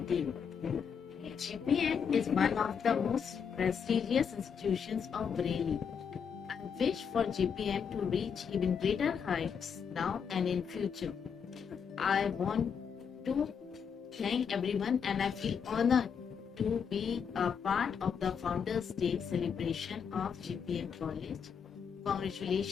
GPM is one of the most prestigious institutions of Bareilly. I wish for GPM to reach even greater heights now and in future. I want to thank everyone and I feel honored to be a part of the Founders Day celebration of GPM College.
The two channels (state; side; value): quieter; right; 6.9 dB